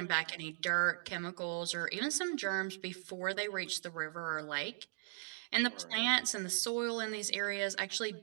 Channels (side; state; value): left; silent; digital silence